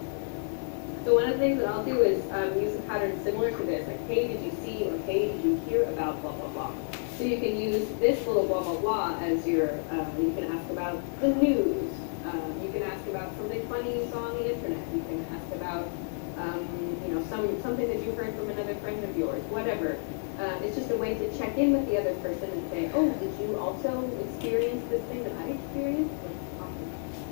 So one of the things that I'll do is use a pattern similar to this, like hey, did you see or hey, did you hear about blah blah blah. So you can use this little blah blah blah as your. You can ask about the news. You can ask about something funny you saw on the internet. You can ask about something that you heard from another friend of yours. Whatever. It's just a way to check in with the other person and say, oh, did you also experience this thing that I experienced? Let's talk about it.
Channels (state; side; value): silent; right; digital silence